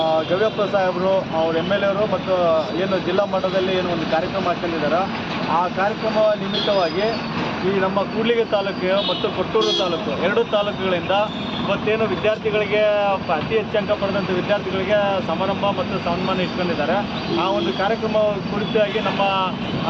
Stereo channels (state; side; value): identical; both; correlation 1.00